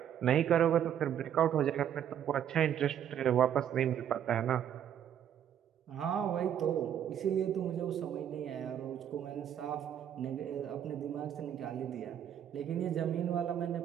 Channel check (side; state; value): left; quieter; 9.7 dB